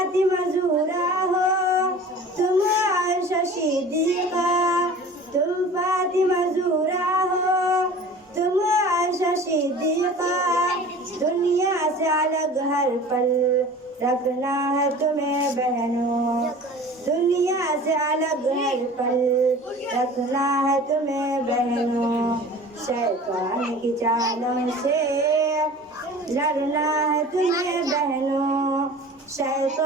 ज़हरा हो, तुम आयशा सिद्दीक़ा, तुम फातिमा ज़हरा हो, तुम आयशा सिद्दीक़ा। दुनिया से अलग हर पल रखना है तुम्हें बहनों, दुनिया से अलग हर पल रखना है तुम्हें बहनों। शैतान की चालों से लड़ना है तुम्हें बहनों,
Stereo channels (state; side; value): normal; both; correlation 0.41